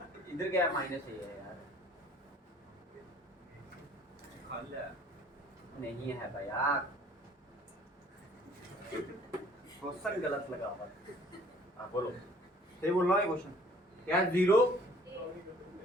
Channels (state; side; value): normal; both; correlation 0.55